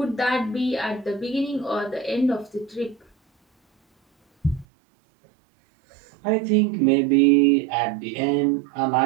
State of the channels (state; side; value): drops out; left; at 4.7 s